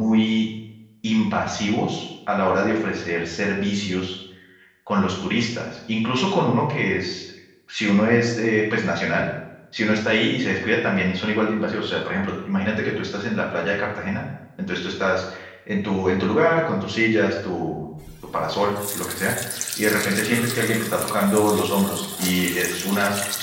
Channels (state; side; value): identical; both; correlation 1.00